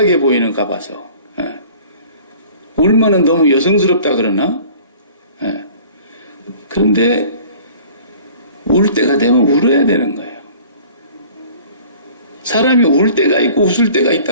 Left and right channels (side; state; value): both; inverted; correlation -0.48